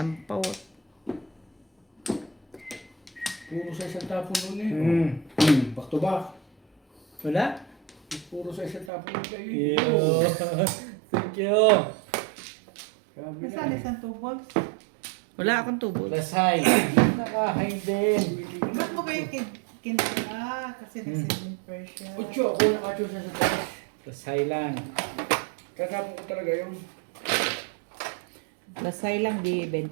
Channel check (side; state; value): left; drops out; at 8.9 s